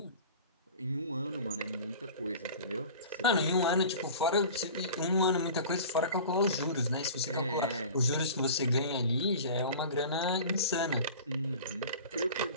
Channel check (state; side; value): inverted; both; correlation -0.39